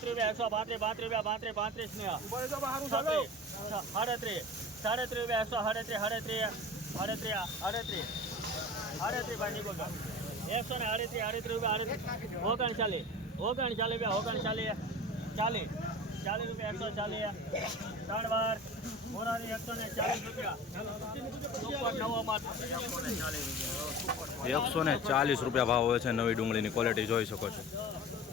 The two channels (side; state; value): both; normal; correlation 0.35